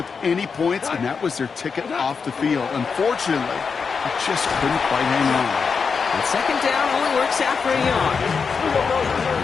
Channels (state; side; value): quieter; right; 5.5 dB